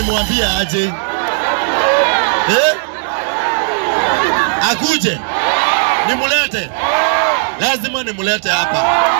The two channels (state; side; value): silent; left; digital silence